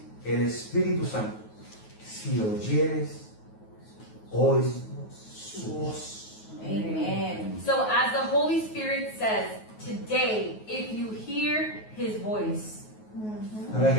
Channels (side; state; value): right; late; 9.4 ms